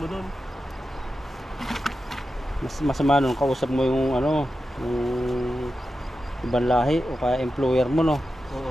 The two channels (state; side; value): normal; both; correlation 0.91